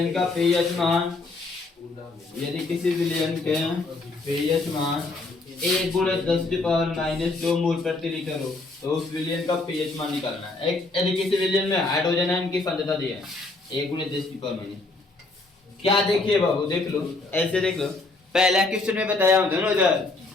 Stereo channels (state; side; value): quieter; right; 3.3 dB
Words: का pH मान यदि किसी विलयन के pH मान 1 गुणे 10 की पावर माइनस 2 मोल प्रति लीटर हो तो उस विलयन का pH मान निकालना है यदि किसी विलयन में हाइड्रोजन आयन की सांद्रता दी है 1 गुणे 10 की पावर माइनस क्या देखिए बाबू देख लो ऐसे देख लो पहला क्वेश्चन में बताया हूं दोनों इधर